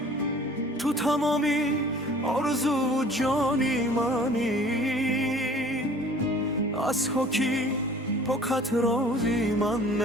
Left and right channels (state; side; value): normal; both; correlation 0.50